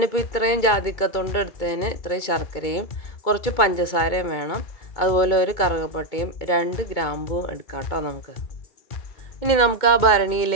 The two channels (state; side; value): late; right; 2.2 ms